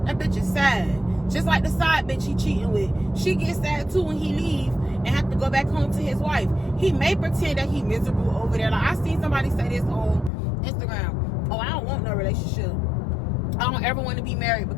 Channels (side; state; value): right; drops out; at 10.3 s